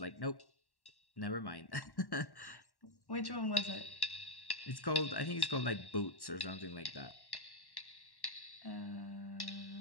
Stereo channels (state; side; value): late; right; 1.1 ms